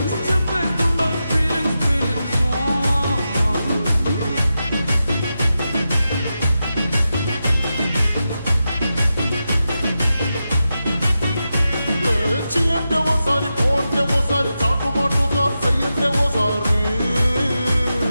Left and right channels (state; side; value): inverted; both; correlation -0.90